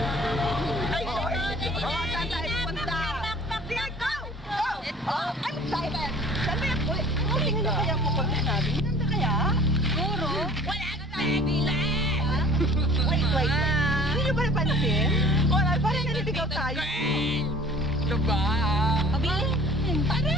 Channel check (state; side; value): normal; both; correlation 0.47